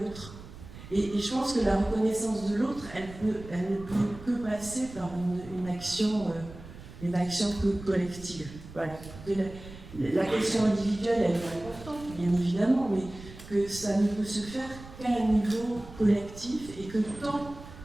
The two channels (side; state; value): right; noise; rumble, 16 dB below the sound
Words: Et je pense que la reconnaissance de l'autre, elle ne peut que passer par une action collective. Voilà. La question individuelle, elle est importante, bien évidemment, mais que ça ne peut se faire qu'à un niveau collectif, et que tant